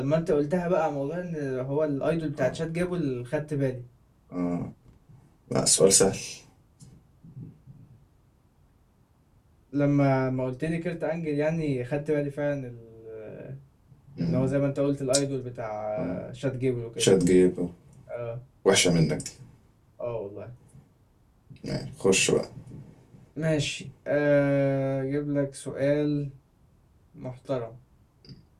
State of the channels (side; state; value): both; identical; correlation 1.00